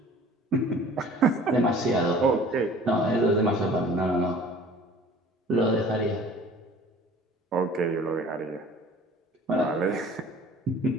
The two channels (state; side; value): normal; both; correlation 0.48